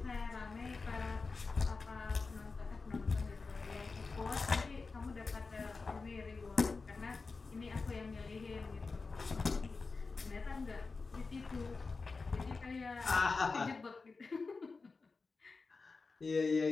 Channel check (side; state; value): right; quieter; 4.2 dB